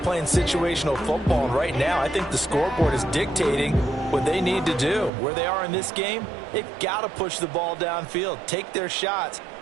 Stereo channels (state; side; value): drops out; left; at 5.1 s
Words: playing situational football, and right now I think the scoreboard is dictating what they need to do. Where they are in this game, they've got to push the ball downfield, take their shots,